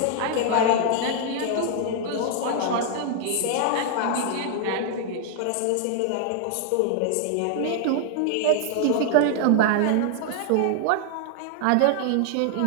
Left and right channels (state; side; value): different; both; correlation 0.00